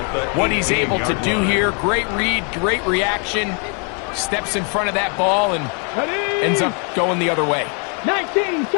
what he's able to do here. Great read, great reaction. Steps in front of that ball and ends up going the other way. 19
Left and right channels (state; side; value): quieter; right; 38.5 dB